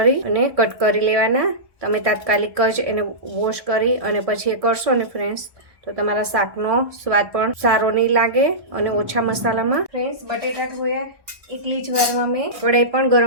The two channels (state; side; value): late; left; 1.1 ms